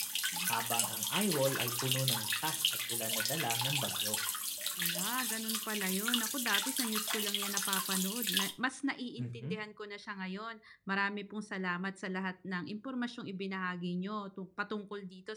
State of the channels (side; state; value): both; identical; correlation 1.00